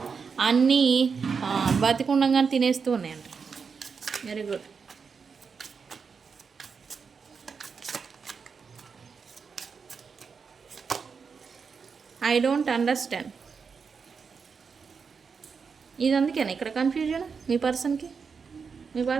అన్నీ బతికుండగానే తినేస్తూ ఉన్నాయంట. Very good. I don't understand. ఇది అందుకేనా ఇక్కడ కన్ఫ్యూజన్ మీ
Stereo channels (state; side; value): quieter; left; 5.6 dB